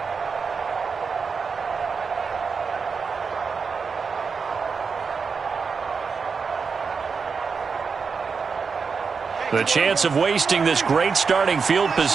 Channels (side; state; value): left; quieter; 5.3 dB